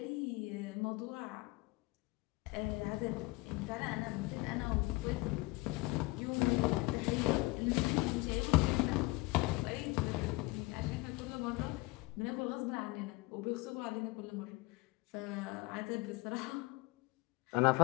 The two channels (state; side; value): quieter; right; 23.4 dB